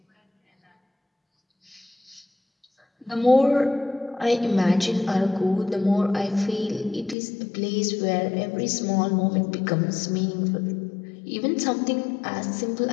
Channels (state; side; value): drops out; right; at 7.2 s